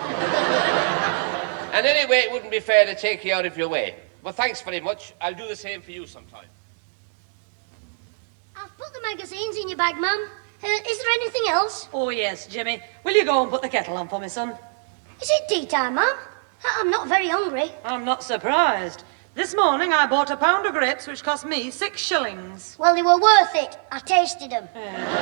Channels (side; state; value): left; silent; digital silence